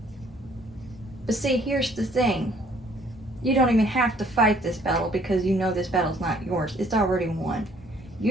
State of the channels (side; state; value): both; normal; correlation 0.60